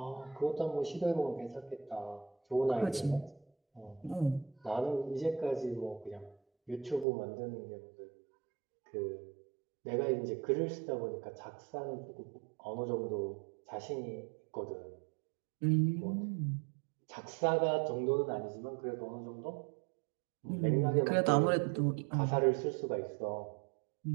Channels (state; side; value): drops out; left; at 7.1 s